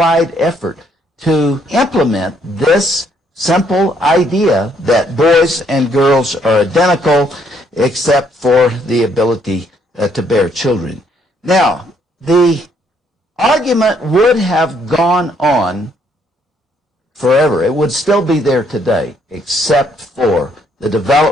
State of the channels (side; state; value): both; normal; correlation 0.69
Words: effort to implement this simple idea that boys and girls are identical except for the ability to bear children. Now, the argument would have gone on forever. It would still be there today, except for the